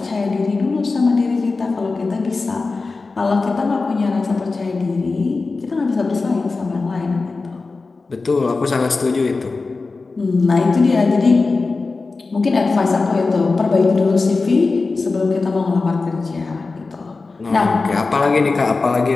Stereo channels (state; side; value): quieter; right; 3.9 dB